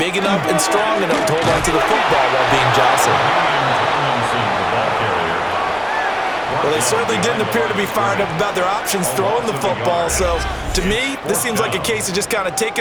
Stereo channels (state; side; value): identical; both; correlation 1.00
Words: enough and strong enough to hold on to the football while being jostled? Well, they certainly didn't appear to be fired up about their options throwing the football. So, to me, this seems like a case of just kind of